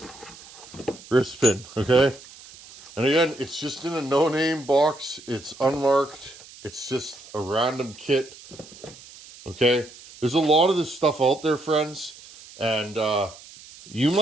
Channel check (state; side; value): noise; right; hiss, 20 dB below the sound